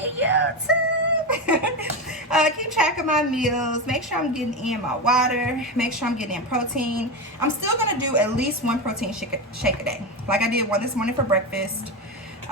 YouTube. Keep track of my meals, make sure I'm getting in my water, make sure I'm getting in protein. I'm still going to do at least one protein shake a day. Like I did one this morning for breakfast.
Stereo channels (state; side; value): normal; both; correlation 0.16